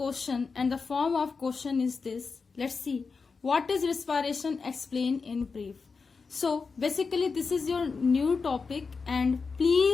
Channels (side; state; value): right; quieter; 4.8 dB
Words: and the form of question is this. Let's see. What is respiration? Explain in brief. So basically this is your new topic, and